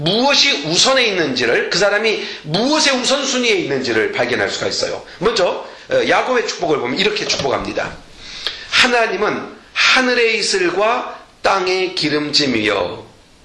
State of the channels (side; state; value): both; identical; correlation 1.00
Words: 우선에 있는지를, 그 사람이 무엇의 우선순위에 있는지를 발견할 수가 있어요. 먼저 야곱의 축복을 보면 이렇게 축복합니다. 하나님은 하늘의 이슬과 땅의 기름짐이여.